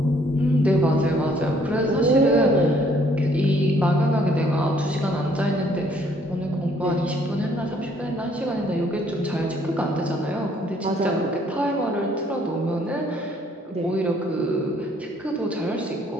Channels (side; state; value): both; normal; correlation 0.64